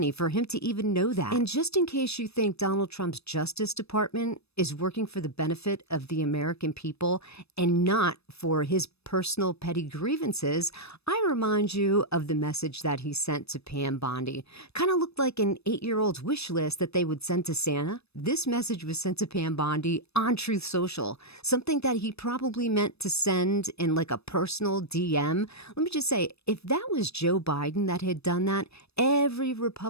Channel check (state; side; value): late; right; 0.79 ms